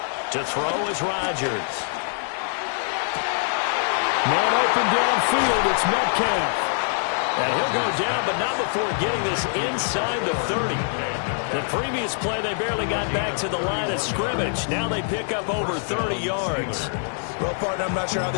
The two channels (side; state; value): right; silent; digital silence